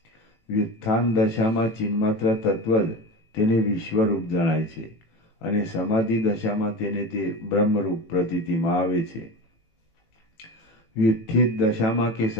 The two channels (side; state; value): right; late; 18 ms